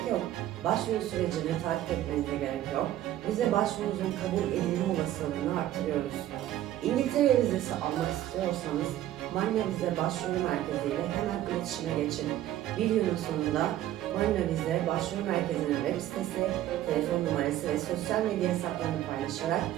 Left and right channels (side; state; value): left; quieter; 13.1 dB